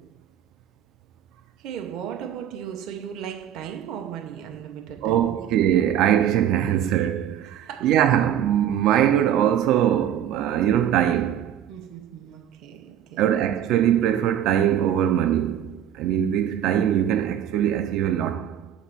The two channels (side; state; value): left; quieter; 10.2 dB